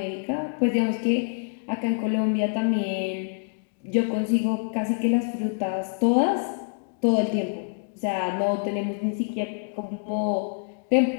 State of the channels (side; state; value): right; silent; digital silence